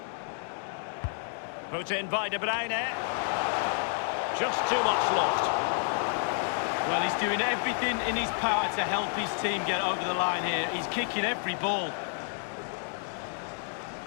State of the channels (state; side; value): silent; right; 58 dB below the other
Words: Put in by De Bruyne. Just too much loft. Well, he's doing everything in his power to help his team get over the line here. He's kicking every ball.